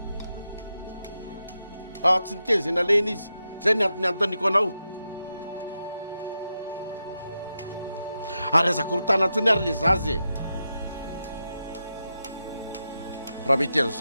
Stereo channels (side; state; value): both; inverted; correlation -0.88